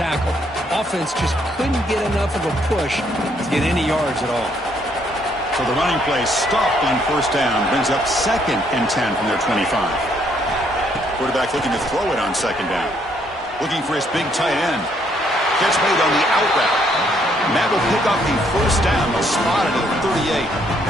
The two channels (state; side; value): normal; both; correlation 0.69